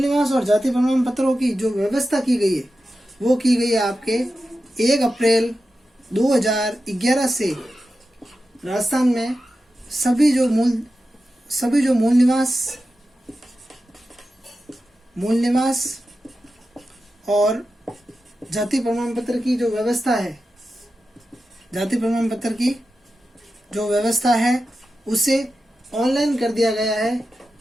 और जाति प्रमाण पत्रों की जो व्यवस्था की गई है वो की गई है आपके 1 अप्रैल 2011 से राजस्थान में सभी जो मूल निवास और जाति प्रमाण पत्र की जो व्यवस्था है, जाति प्रमाण पत्र की जो व्यवस्था है उसे ऑनलाइन कर दिया गया है।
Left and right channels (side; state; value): both; normal; correlation 0.92